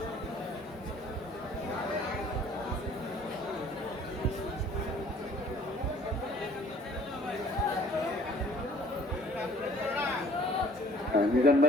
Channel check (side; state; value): both; normal; correlation 0.55